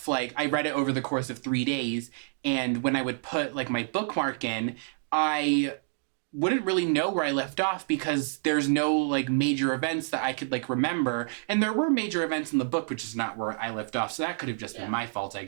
I read it over the course of 3 days, and when I would put my bookmark in, I wouldn't really know where I left off because there's no major events that I could remember. And there were major events in the book, which is not where I left off. So that could have just been my fault, I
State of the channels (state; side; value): silent; left; digital silence